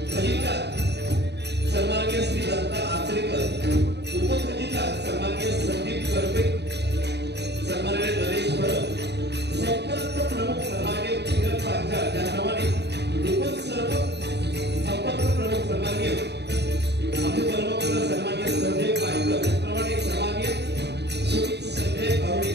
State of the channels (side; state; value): left; late; 0.49 ms